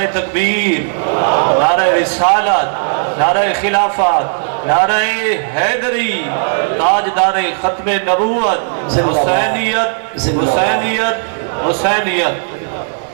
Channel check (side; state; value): left; silent; digital silence